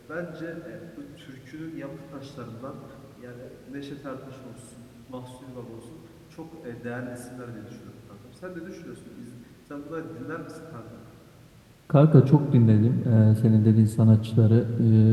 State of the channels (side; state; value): both; identical; correlation 1.00